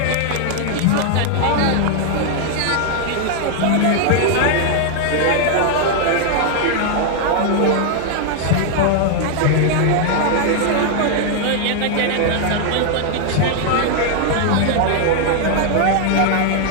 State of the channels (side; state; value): both; different; correlation 0.00